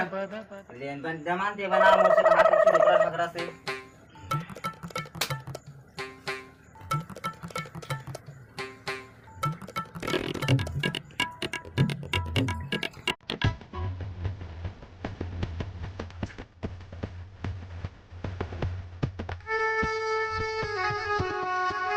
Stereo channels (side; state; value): both; identical; correlation 1.00